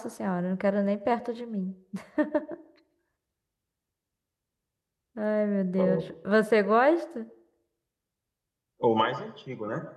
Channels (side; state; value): both; identical; correlation 1.00